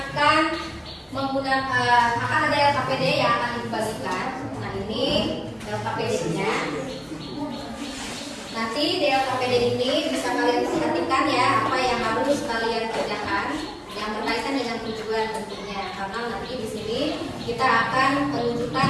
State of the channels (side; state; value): both; identical; correlation 1.00